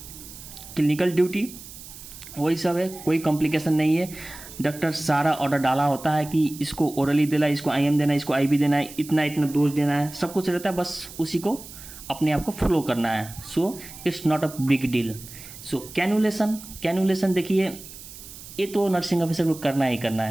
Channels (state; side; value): noise; right; hiss, 15 dB below the sound